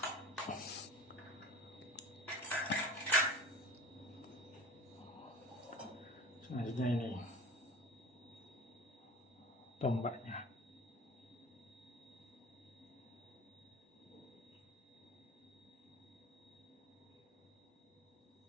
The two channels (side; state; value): both; normal; correlation 0.39